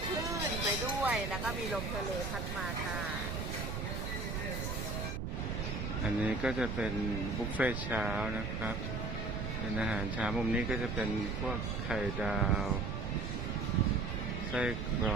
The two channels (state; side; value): noise; right; rumble, 3 dB below the sound